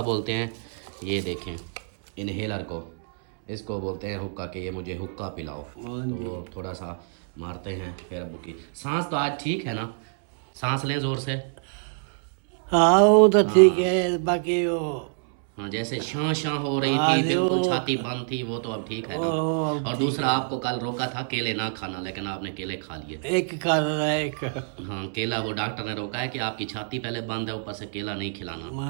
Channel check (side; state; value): left; silent; 61 dB below the other